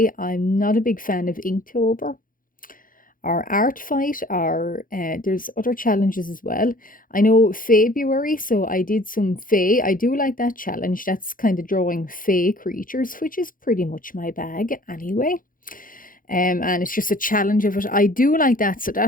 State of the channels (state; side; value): late; right; 0.40 ms